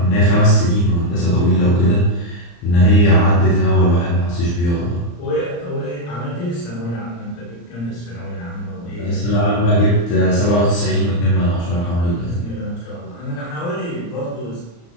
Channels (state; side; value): late; right; 35 ms